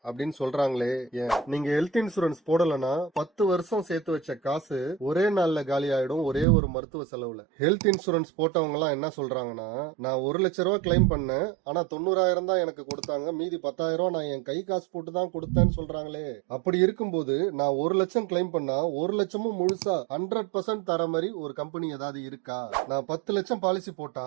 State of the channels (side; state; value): left; drops out; at 6.5 s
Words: அப்படின்னு சொல்றாங்களே ஏன்? நீங்க ஹெல்த் இன்சூரன்ஸ் போடலனா 10 வருஷம் சேர்த்து வச்ச காசு ஒரே நாள்ல காலி ஆயிடும், ஒரே ஒரு மருத்துவ செலவுல. ஹெல்த் இன்சூரன்ஸ் போட்டவங்க எல்லாம் என்ன சொல்றாங்கன்னா, நான் 1,00,000 கிளைம் பண்ணேன், ஆனா 90,000 தான் எனக்கு கொடுத்தாங்க, மீதி 10,000 நான் என் கை காசு போட்டு தான் கொடுத்தேன்னு சொல்றாங்களே. அப்படி இருக்கும்போது நான் 1,00,000 கிளைம் பண்ணா 1,00,000 முழுசா 100% தர மாதிரி ஒரு கம்பெனி ஏதாவது இருக்கா? நான் 10 லட்சம் பாலிசி